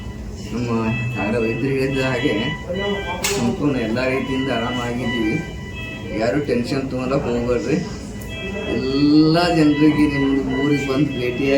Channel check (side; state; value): both; identical; correlation 1.00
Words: ನಮ್ಮ ವೈದ್ಯರು ಹೇಳಿದ ಹಾಗೆ ಸಂಪೂರ್ಣ ಎಲ್ಲ ರೀತಿಯಿಂದ ಆರಾಮಾಗಿದ್ದೀವಿ. ಯಾರು ಟೆನ್ಷನ್ ತೊಗೊಳಕ್ಕೆ ಹೋಗ್ಬೇಡ್ರಿ. ಎಲ್ಲ ಜನರಿಗೆ ನಿಮ್ಮದು ಊರಿಗೆ ಬಂದು